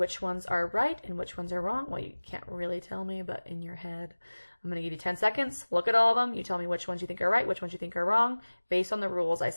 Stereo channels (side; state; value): both; inverted; correlation -1.00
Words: ones are right and which ones are wrong. Well, you can't really tell me, but in your head. I'm going to give you 10 seconds. Look at all of them. You tell me which ones you think are right, which ones you think are wrong, based on the rules I